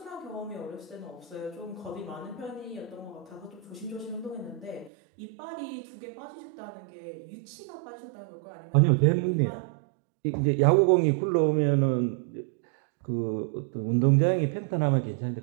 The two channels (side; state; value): left; drops out; at 4.9 s